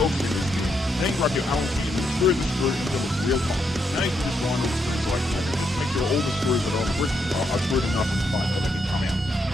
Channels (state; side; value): normal; both; correlation 0.79